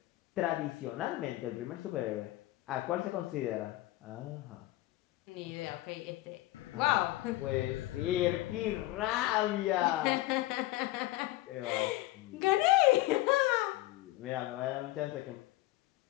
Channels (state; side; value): quieter; right; 17.3 dB